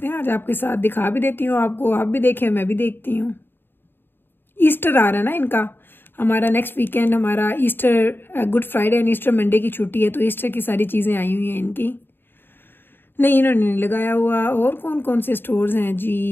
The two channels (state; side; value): late; right; 0.099 ms